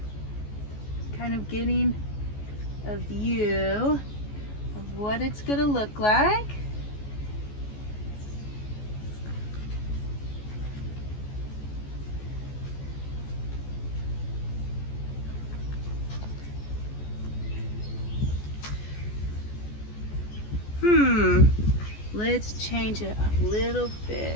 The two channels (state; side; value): late; right; 14 ms